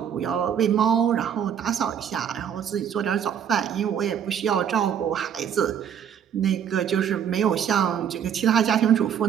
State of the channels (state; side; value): quieter; left; 8.6 dB